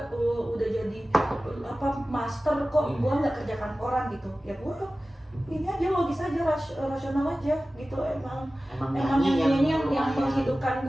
udah jadi master kok gue nggak kerja kantoran gitu. Ya gue ini aja logis aja, rasional aja gitu. Emang nyanyinya yang menghidupkan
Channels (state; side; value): normal; both; correlation 0.96